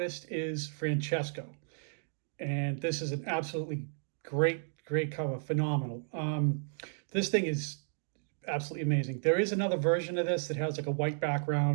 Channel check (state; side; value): silent; left; digital silence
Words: is Francesco. And this is an absolutely great cover. Phenomenal. This thing is absolutely amazing. There is another version of this that has like a white